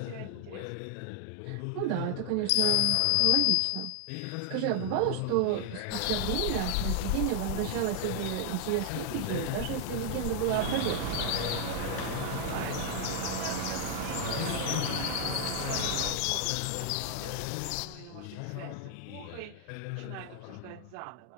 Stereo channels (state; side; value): different; both; correlation 0.00